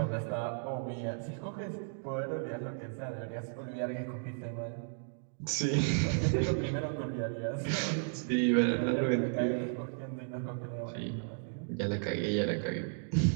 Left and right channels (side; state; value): left; silent; digital silence